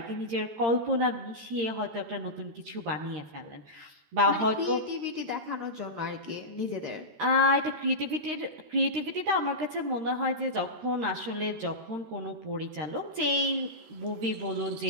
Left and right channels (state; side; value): late; left; 13 ms